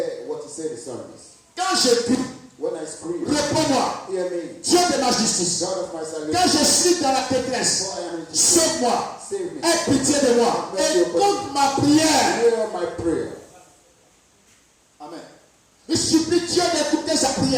Quand je prie, when I scream, réponds-moi. hear me. Dieu de ma justice. God of my salvation. Quand je suis dans la détresse, For I am in distress. sauve-moi. Save me. Aie pitié de moi. Écoute ma prière. Hear my prayer. Amen. Il supplie Dieu d'écouter sa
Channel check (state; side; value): identical; both; correlation 1.00